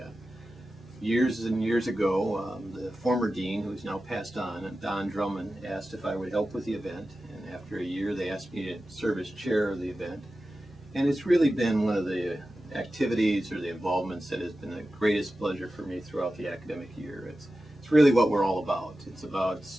Years and years ago, the former dean, who's now passed on, Don Drummond, asked if I would help with the event. And after a year, they asked me to serve as chair of the event. And it's really been one of the activities or the involvements that has been the greatest pleasure for me throughout the academic year. It's really what we're all about. It's about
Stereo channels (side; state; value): both; normal; correlation 0.93